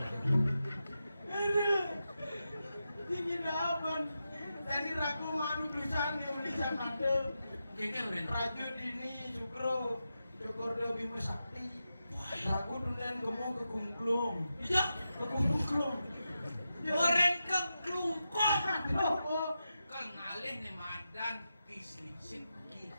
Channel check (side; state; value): both; inverted; correlation -0.89